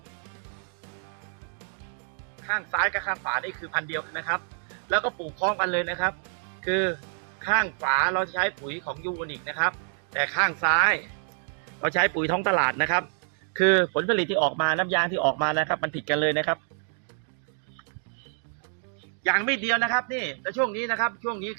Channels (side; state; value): left; silent; 60 dB below the other